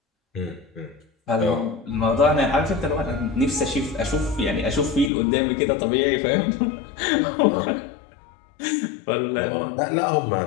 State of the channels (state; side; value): drops out; right; at 5.1 s